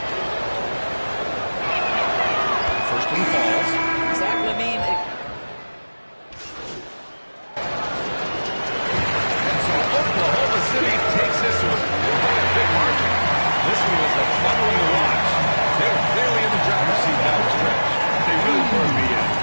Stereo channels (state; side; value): inverted; both; correlation -1.00